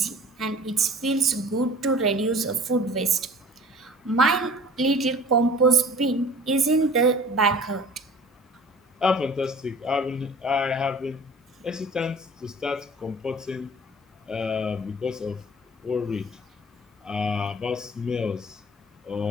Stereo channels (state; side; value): normal; both; correlation 0.46